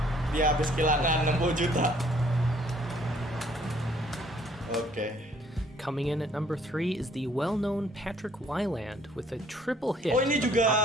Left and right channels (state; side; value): normal; both; correlation 0.61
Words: habis kehilangan 60 juta. Oke. Coming in at number 3 is the well-known Patrick Wyland with a triple hit. Oh, ini of juga